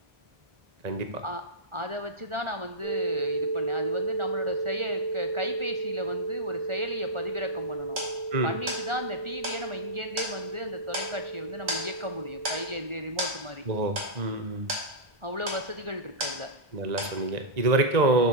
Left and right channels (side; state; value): left; late; 1.4 ms